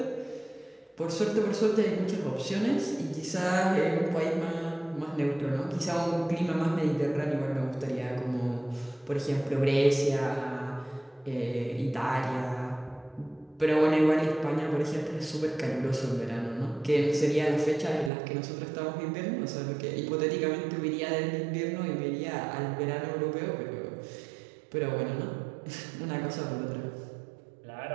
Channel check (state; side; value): drops out; left; at 18.1 s